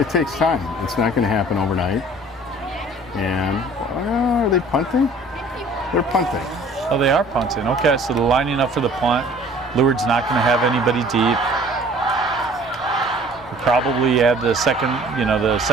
takes time. It's not going to happen overnight. And are they punting? They're punting. Oh, they are punting. Okay, so they're lining up for the punt. Lourdes not going to have anybody deep. We'll probably add the second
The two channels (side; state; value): both; normal; correlation 0.51